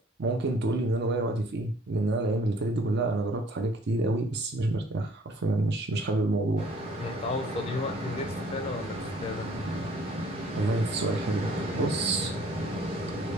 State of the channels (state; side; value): normal; both; correlation 0.57